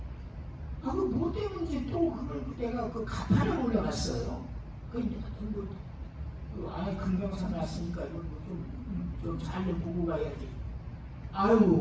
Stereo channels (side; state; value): both; identical; correlation 1.00